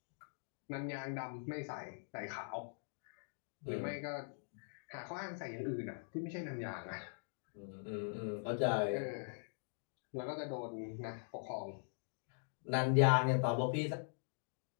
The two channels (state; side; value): silent; right; digital silence